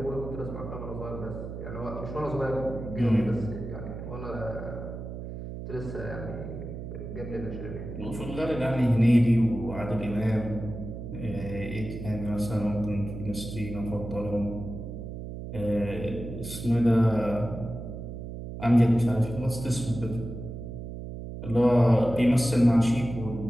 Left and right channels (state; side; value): noise; right; hum, 8 dB below the sound